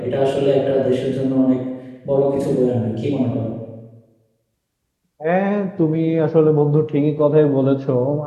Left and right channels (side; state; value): both; identical; correlation 1.00